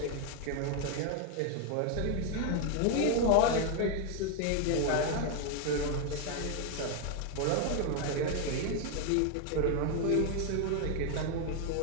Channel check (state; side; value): different; both; correlation 0.01